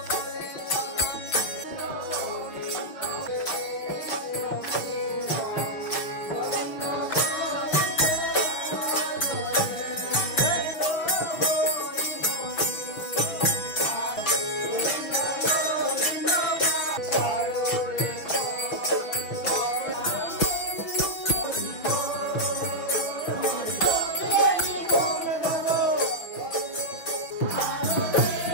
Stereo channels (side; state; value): right; late; 6.1 ms